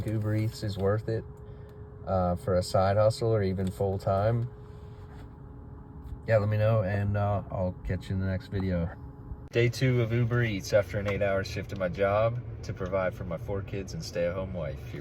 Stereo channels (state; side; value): identical; both; correlation 1.00